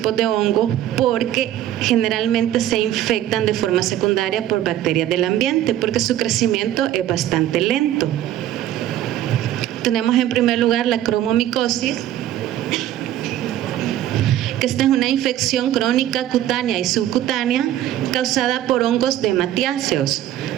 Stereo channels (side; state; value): left; quieter; 12.5 dB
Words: de hongos porque generalmente se infectan de forma secundaria por bacterias del ambiente porque su crecimiento es bastante lento. Tenemos en primer lugar la cromomicosis, que esta es una infección crónica cutánea y subcutánea causada por hongos dematiáceos.